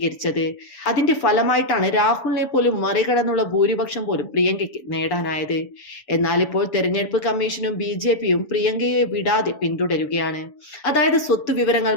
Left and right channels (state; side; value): late; right; 7.1 ms